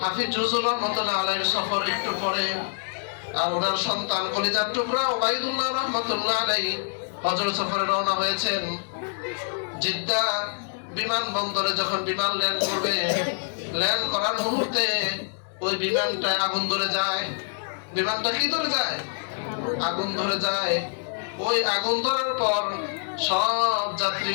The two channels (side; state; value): right; silent; digital silence